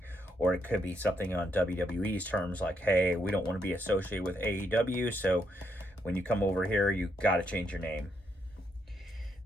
or it could be something on WWE's terms, like, hey, we don't want to be associated with AEW, so when you come over here, you got to change your name.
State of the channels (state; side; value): normal; both; correlation 0.77